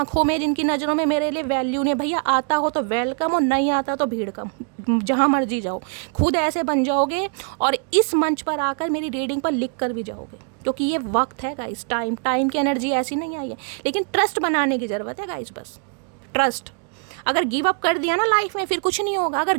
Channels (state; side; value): quieter; left; 39.8 dB